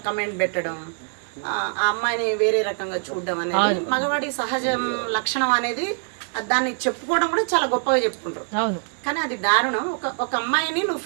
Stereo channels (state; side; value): silent; left; 57 dB below the other